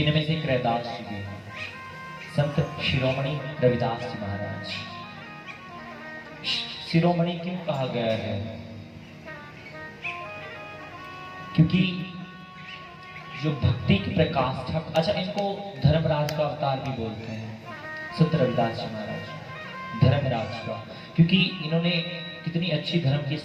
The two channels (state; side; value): identical; both; correlation 1.00